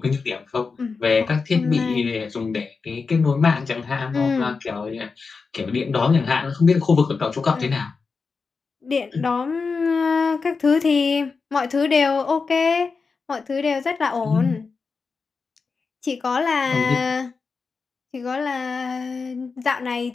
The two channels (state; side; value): quieter; right; 4.7 dB